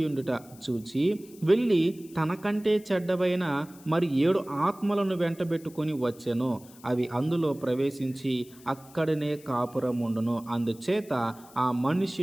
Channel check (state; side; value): noise; left; hiss, 23 dB below the sound